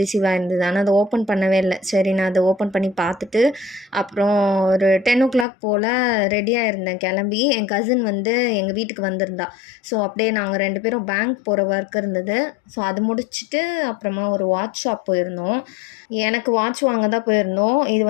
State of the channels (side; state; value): right; drops out; at 5.5 s